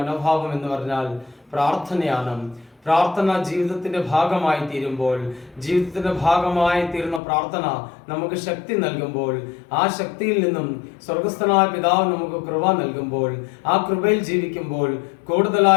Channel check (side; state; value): right; drops out; at 7.2 s